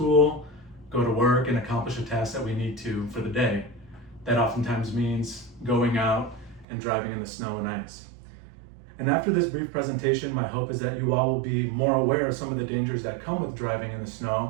go to work, and accomplish a task that we need to for the day. That oftentimes means going out and driving in the snow and ice. And after this brief presentation, my hope is that you all will be more aware of some of the dangers that come with driving in the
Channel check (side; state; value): left; drops out; at 6.7 s